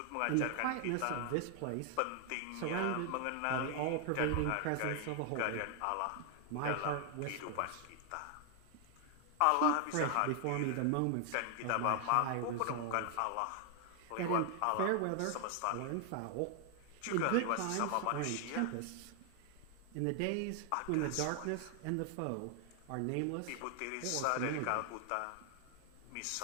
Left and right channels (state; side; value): different; both; correlation 0.00